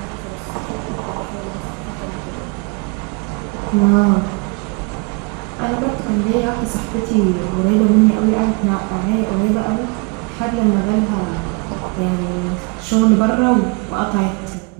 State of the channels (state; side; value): quieter; left; 30.1 dB